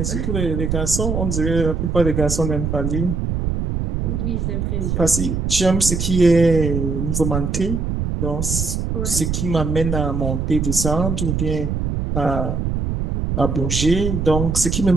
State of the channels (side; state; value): right; noise; rumble, 1 dB below the sound